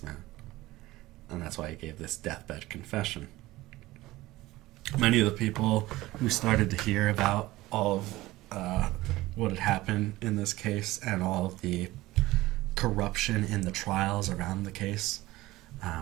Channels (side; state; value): left; quieter; 18.2 dB